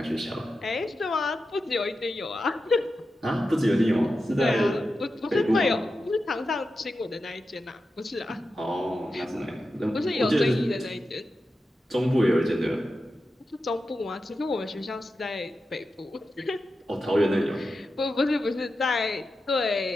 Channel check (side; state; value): both; normal; correlation 0.90